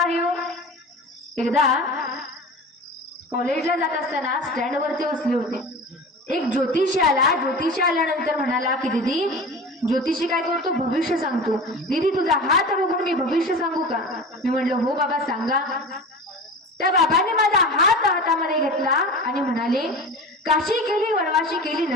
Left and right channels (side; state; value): both; normal; correlation 0.33